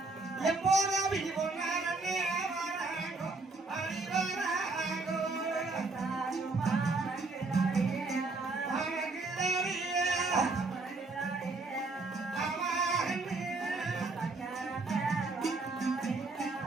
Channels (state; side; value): quieter; left; 3.5 dB